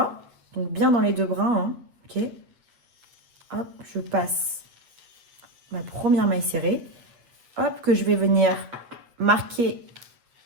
donc bien dans les 2 brins, hein, ok. Hop, je passe ma première maille serrée. Hop, que je vais venir marquer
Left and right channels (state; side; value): late; left; 8.5 ms